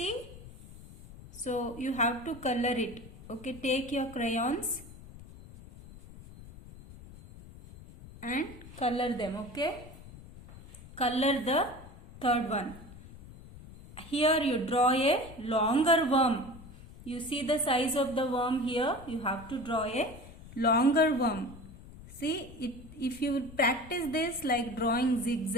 So you have to color it. Okay, take your crayons and color them, okay? Color the third one. Here you draw a longer worm. You see the size of the worm here. You have to draw a longer worm. See, if you practice this like drawing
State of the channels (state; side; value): noise; left; rumble, 17 dB below the sound